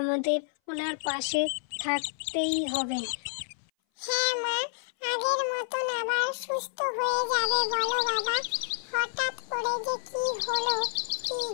ওনার পাশে থাকতেই হবে। হ্যাঁ মা, আগের মতন আবার সুস্থ হয়ে যাবে বলো বাবা। হঠাৎ করে যে কি হলো কি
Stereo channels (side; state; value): right; silent; 58 dB below the other